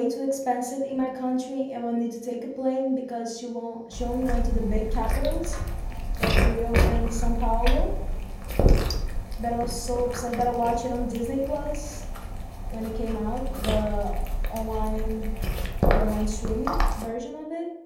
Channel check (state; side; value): identical; both; correlation 1.00